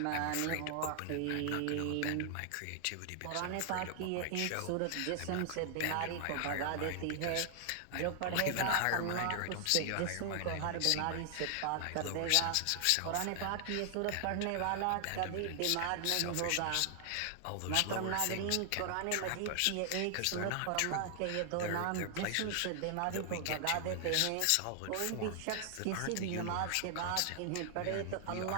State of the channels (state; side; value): different; both; correlation 0.00